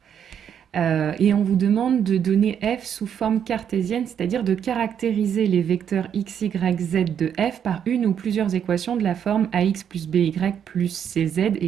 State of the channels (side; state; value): left; quieter; 8.6 dB